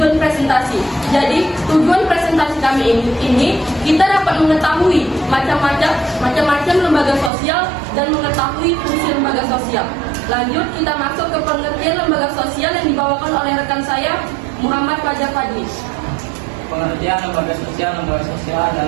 presentasi. Jadi, tujuan presentasi kami ini kita dapat mengetahui macam-macam lembaga sosial dan mengetahui fungsi lembaga sosial. Lanjut, kita masuk ke pengertian lembaga sosial yang dibawakan oleh rekan saya, Muhammad Fajar Fadli. Pengertian lembaga sosial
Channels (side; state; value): left; drops out; at 7.3 s